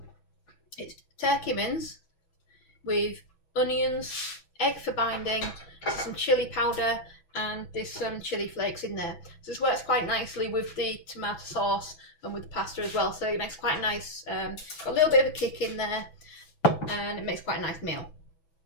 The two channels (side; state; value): right; late; 6.0 ms